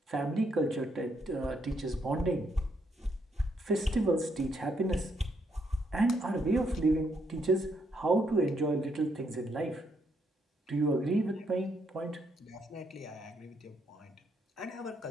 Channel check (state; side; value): normal; both; correlation 0.75